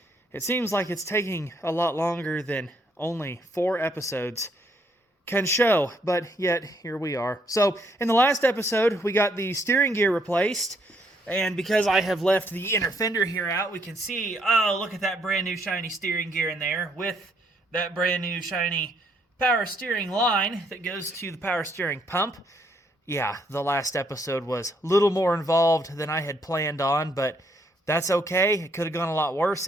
It seems like it's taking a lot longer than only 4 episodes can show, but yet here we are. So, in the last episode, we got the steering gear replaced, and because I have left the inner fender here out, we can see, oh, look at that brand new shiny steering gear in there with that brand new shiny power steering line that goes to the power steering pump. Yeah, the last episode was a little more involved than I had planned on, but that's okay. It could have gone a lot worse.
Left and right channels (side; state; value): both; normal; correlation 0.71